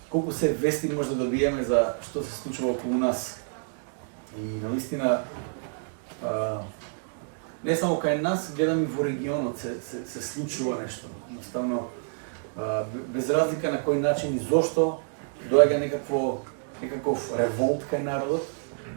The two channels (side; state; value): left; silent; 59 dB below the other